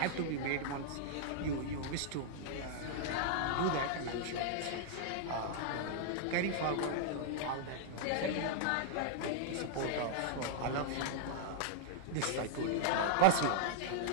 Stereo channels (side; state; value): both; different; correlation -0.01